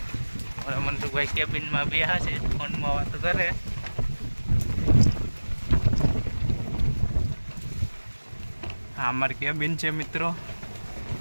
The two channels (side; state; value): both; inverted; correlation -1.00